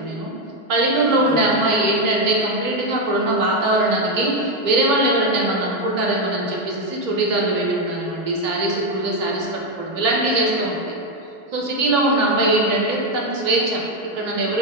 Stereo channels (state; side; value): late; left; 3.2 ms